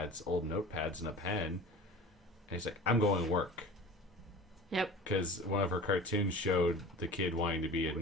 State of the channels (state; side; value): normal; both; correlation 0.38